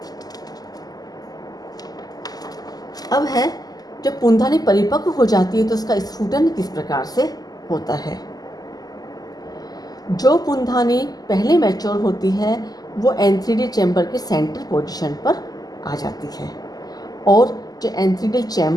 अब है जब पुंधानी परिपक्व हो जाती है तो उसका स्फुटन किस प्रकार से होता है। जो पुंधानी पहले मैच्योर होती है वो एंथ्रीडियल चैम्बर के सेंटर पोजीशन पर आ जाती है और जो एंथ्रीडियल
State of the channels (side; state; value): right; late; 0.18 ms